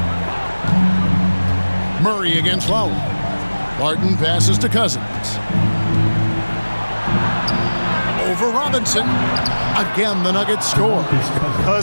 Murray against Lowry. Barton passes to Cousins. Over Robinson. Again, the Nuggets score.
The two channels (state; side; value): inverted; both; correlation -1.00